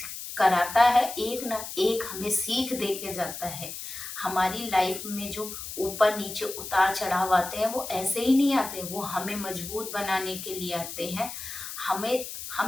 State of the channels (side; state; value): left; noise; hiss, 9 dB below the sound